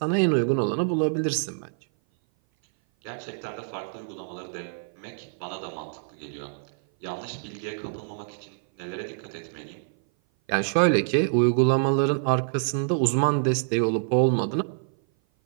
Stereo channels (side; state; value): left; silent; 57 dB below the other